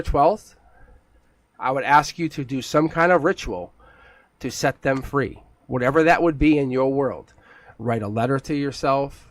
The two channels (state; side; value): identical; both; correlation 1.00